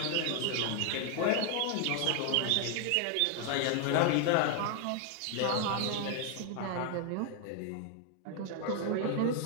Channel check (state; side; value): different; both; correlation 0.00